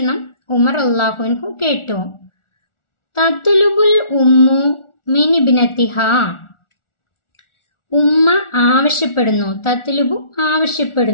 ഉമർ റളിയല്ലാഹു അൻഹു കേട്ടു. തത്ലുബുൽ ഉമ്മു മിൻ ഇബ്നതിഹ ഉമ്മ ആവശ്യപ്പെടുന്നു. തത്ലുബു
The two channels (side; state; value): right; late; 1.4 ms